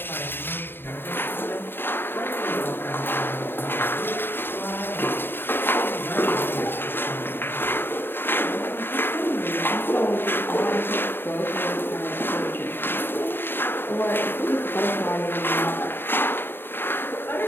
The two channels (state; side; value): late; right; 0.10 ms